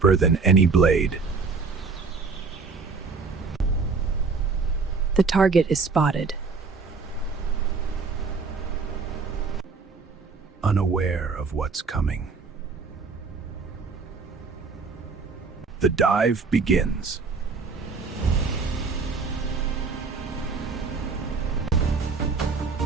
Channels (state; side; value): quieter; left; 4.6 dB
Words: than any blade. The target is spotted. Unaware of what's coming. The dive begins.